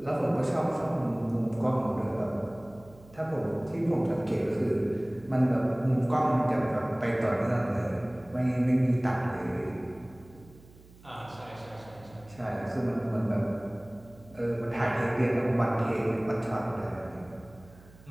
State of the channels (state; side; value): noise; right; hum, 23 dB below the sound